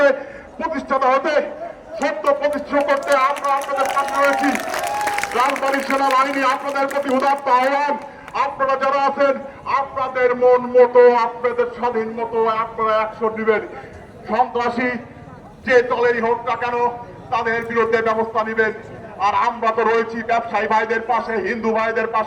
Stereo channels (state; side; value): identical; both; correlation 1.00